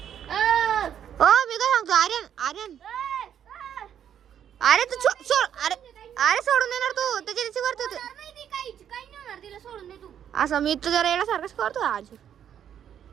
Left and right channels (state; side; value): quieter; left; 9.4 dB